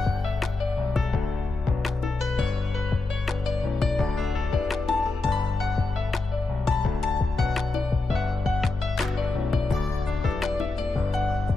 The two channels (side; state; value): right; quieter; 3.3 dB